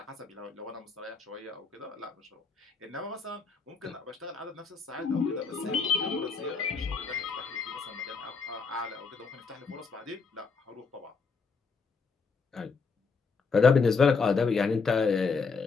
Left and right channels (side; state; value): right; quieter; 4.9 dB